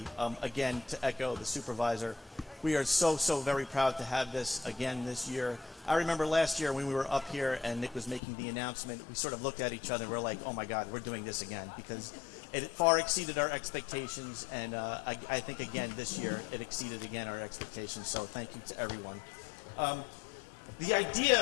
Again, to echo the supervisor, we are so very proud to have this again this year. I remember last year when we were up here and Nick was making the announcement, we sort of looked at each other and we're like, oh my God, we're doing this again, because it far exceeded our expectations, and I think again this year it exceeded again our expectations, so thank you to everyone. The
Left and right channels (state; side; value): drops out; right; at 8.2 s